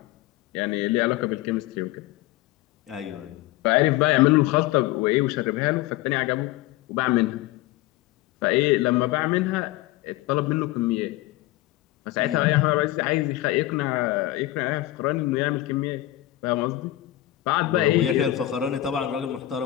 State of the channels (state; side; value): quieter; right; 15.9 dB